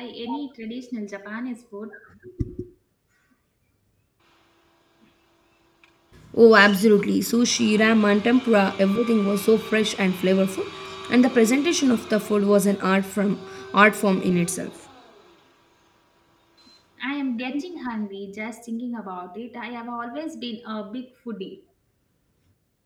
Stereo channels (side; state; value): both; identical; correlation 1.00